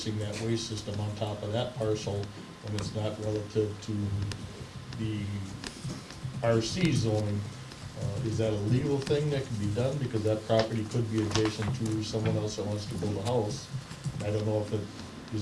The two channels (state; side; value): identical; both; correlation 1.00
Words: that waste system on top of that parcel when it's not relative to the RC zoning. Is that a legal thing that can be done? Because that property could be adjacent to someone else that wants to build a house. I don't know if it